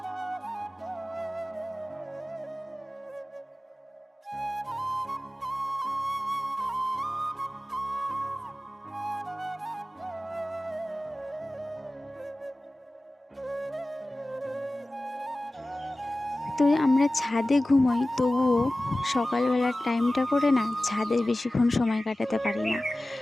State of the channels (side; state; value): both; normal; correlation 0.97